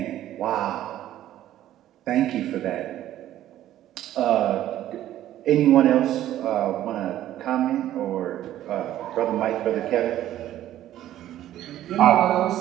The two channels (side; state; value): left; quieter; 12.8 dB